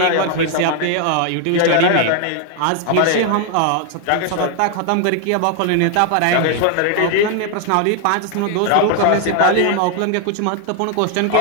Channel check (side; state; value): both; different; correlation 0.00